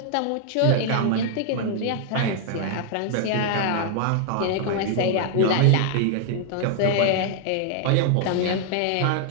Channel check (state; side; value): different; both; correlation 0.00